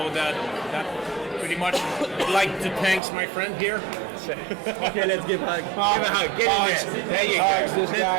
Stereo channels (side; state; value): left; drops out; at 3.0 s